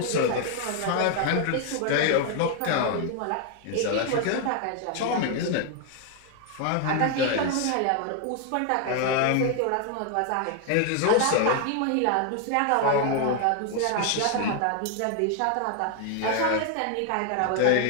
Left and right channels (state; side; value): different; both; correlation 0.00